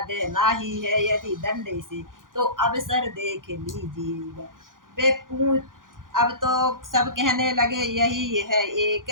देना ही है यदि दंड से तो अवसर देख लीजिएगा। वे पूछ अब तो सब कहने लगे यही है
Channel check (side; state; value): left; late; 0.90 ms